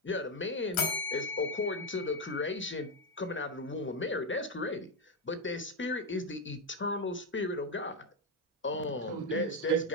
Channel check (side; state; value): both; normal; correlation 0.06